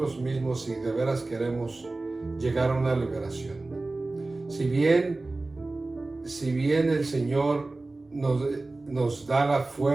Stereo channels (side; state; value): left; quieter; 3.2 dB